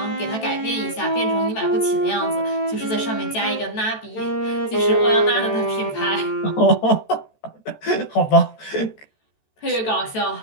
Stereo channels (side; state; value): right; late; 14 ms